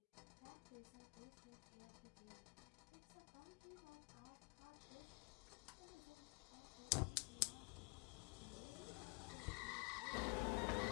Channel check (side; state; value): right; quieter; 32.4 dB